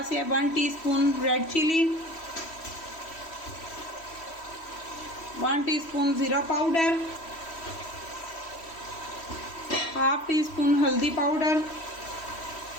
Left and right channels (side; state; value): right; late; 3.1 ms